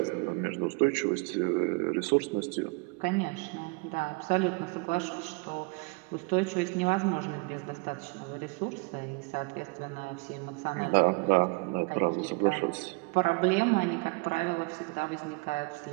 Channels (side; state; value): left; quieter; 30.3 dB